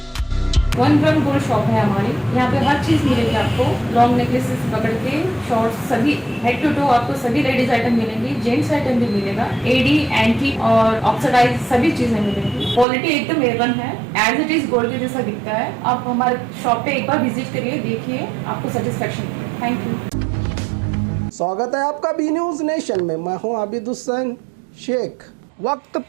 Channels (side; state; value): left; drops out; at 12.9 s